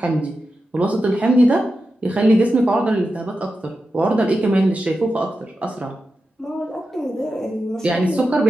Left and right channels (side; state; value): both; normal; correlation 0.90